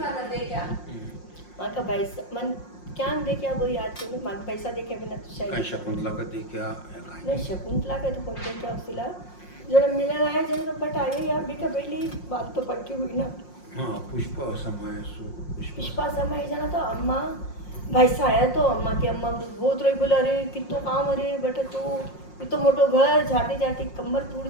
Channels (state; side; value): late; right; 5.6 ms